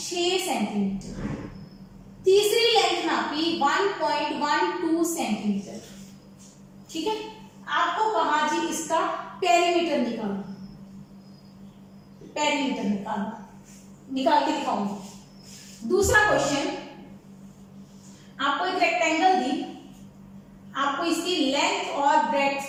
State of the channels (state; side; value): identical; both; correlation 1.00